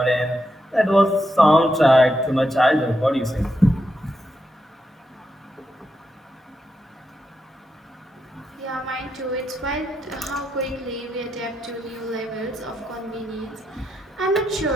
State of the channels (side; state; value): both; normal; correlation 0.84